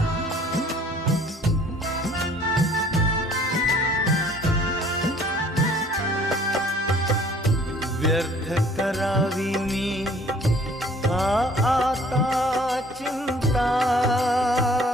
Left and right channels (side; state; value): both; normal; correlation 0.55